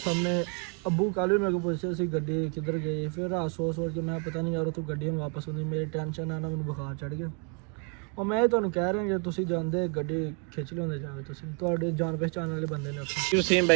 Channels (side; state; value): left; quieter; 36.5 dB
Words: ਸਾਹਮਣੇ ਅੱਬੂ ਕੱਲ੍ਹ ਵੀ ਮੇਰੇ ਕੋਲ ਪੁੱਛਿਆ ਸੀ ਗੱਡੀ ਕਿੱਧਰ ਗਈ। ਫਿਰ ਰਾਤ ਸੋਚ ਕੇ ਮੈਂ ਪਤਾ ਨਹੀਂ ਯਾਰ ਉੱਥੋਂ ਗੱਡੀ ਹੁਣ ਵਾਪਸ ਆਉਂਦੀ, ਮੇਰੀ ਟੈਨਸ਼ਨ ਆ ਨਾ, ਮੈਨੂੰ ਬੁਖਾਰ ਚੜ੍ਹ ਗਿਆ। ਉਹ ਮੈਂ ਤੁਹਾਨੂੰ ਕਹਿ ਰਿਹਾ ਜੇ ਤੁਸੀਂ ਜਾਂਦੇ ਗੱਡੀ ਖਿੱਚ ਲਿਆਉਂਦੇ ਜਾਵੇ, ਤੁਸੀਂ ਤੁਹਾਡੇ ਜਾਣ ਪਹਿਚਾਣ ਵਾਲੇ ਬੰਦੇ ਨੇ ਉੱਥੇ। ਵਸੀਮ